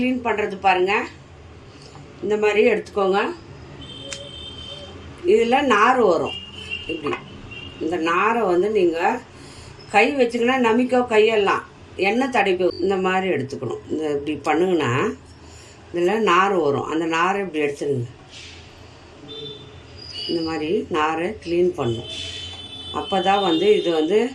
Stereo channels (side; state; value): both; identical; correlation 1.00